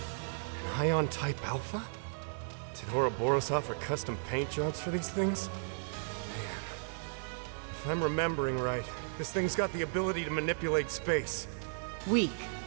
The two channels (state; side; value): silent; left; digital silence